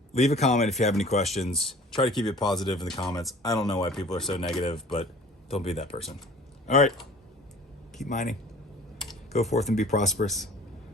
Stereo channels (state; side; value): normal; both; correlation 0.47